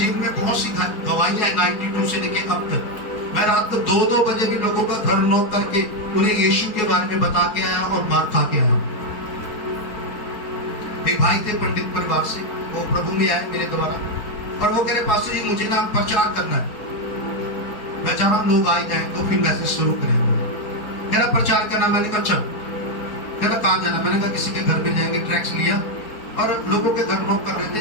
में बहुत सी गवाहियां हैं 92 से लेके अब तक। मैं रात को 2-2 बजे भी लोगों का घर नॉक करके उन्हें यीशु के बारे में बता के आया और मार खा के आया। एक भाई थे पंडित परिवार से, वो प्रभु में आए मेरे द्वारा और वो कह रहे पास्टर जी मुझे ना प्रचार करना है, मैं चाह रहा हूँ लोग आए जाए तो फिर मैसेज शुरू करें। कह रहा प्रचार करना, मैंने कहा चल। कह रहा कहाँ जाना, मैंने कहा किसी के घर में जाएंगे। ट्रैक्स लिया और लोगों के घर नॉक कर रहे थे,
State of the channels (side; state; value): right; late; 4.2 ms